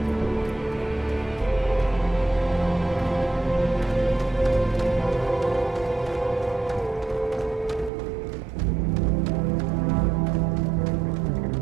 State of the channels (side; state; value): left; drops out; at 7.9 s